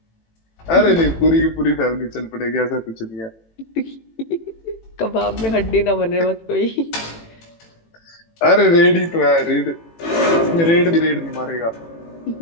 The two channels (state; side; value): late; right; 18 ms